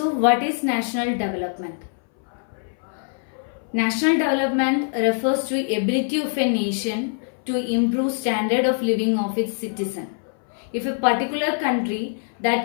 what is national development? National development refers to ability of a nation to improve standard of living of its citizen. If a particular country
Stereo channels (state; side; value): silent; right; 61 dB below the other